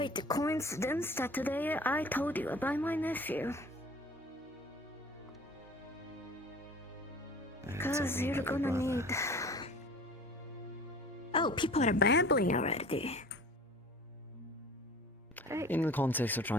a coincidence that today I told you about my nephew. Because you're gonna need... Oh, people are babbling already. Right. In the context of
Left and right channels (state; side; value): normal; both; correlation 0.44